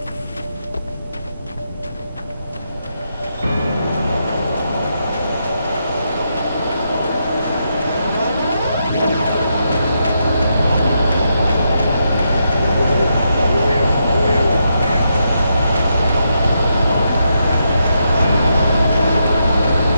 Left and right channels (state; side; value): inverted; both; correlation -0.81